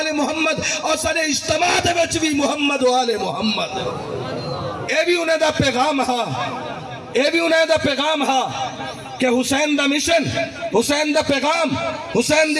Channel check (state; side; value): identical; both; correlation 1.00